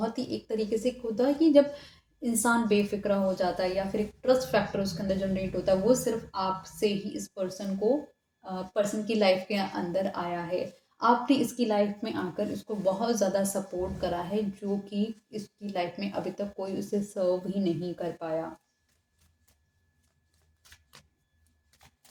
ही एक तरीके से होता है कि जब इंसान बेफ़िक्रा हो जाता है या फिर एक ट्रस्ट फैक्टर उसके अंदर जनरेट होता है, वो सिर्फ़ आपसे ही इस पर्सन को पर्सन की लाइफ़ के अंदर आया है। आपने इसकी लाइफ़ में आकर इसको बहुत ज़्यादा सपोर्ट करा है, जो कि इसकी लाइफ़ में अभी तक कोई उसे सर्व ही नहीं कर पाया।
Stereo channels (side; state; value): both; identical; correlation 1.00